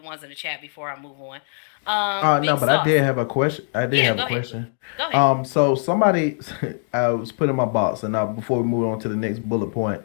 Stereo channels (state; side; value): silent; right; 58 dB below the other